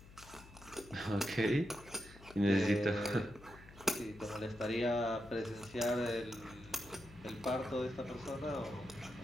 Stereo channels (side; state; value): left; noise; hum, 20 dB below the sound